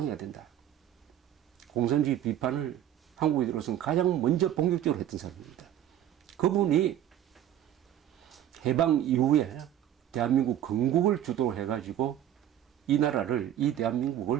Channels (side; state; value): left; quieter; 11.2 dB